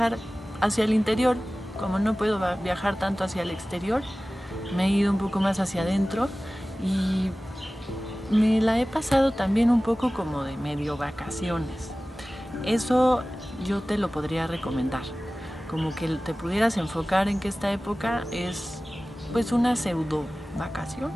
hacia el interior. Como no puedo viajar tanto hacia el exterior, me he ido un poco más hacia adentro y me la he pasado también un poco como de medio vacaciones. Eso yo te lo podría recomendar, como que te pudieras enfocar en que esta época es pues una pseudo vacación.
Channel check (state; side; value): normal; both; correlation 0.97